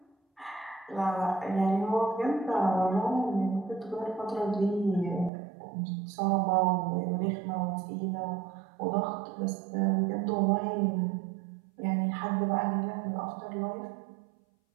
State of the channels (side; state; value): left; drops out; at 5.3 s